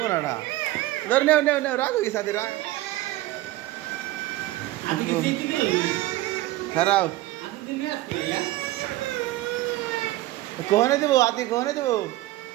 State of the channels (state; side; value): quieter; left; 17.0 dB